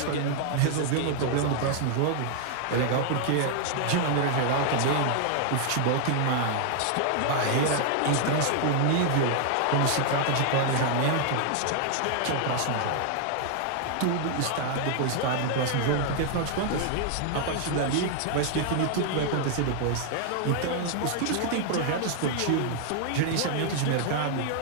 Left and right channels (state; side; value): different; both; correlation 0.00